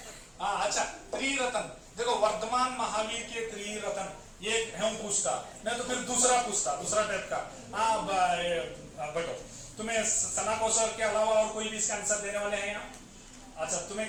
अच्छा, त्रिरत्न देखो, वर्तमान महावीर के त्रिरत्न, ये हम पूछता, नहीं तो फिर दूसरा पूछता, दूसरा टाइप का। हाँ बैठो, तुम्हें सना कौशल के अलावा और कोई भी इसका आंसर देने वाले हैं यहाँ? अच्छा तुम्हें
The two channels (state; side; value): identical; both; correlation 1.00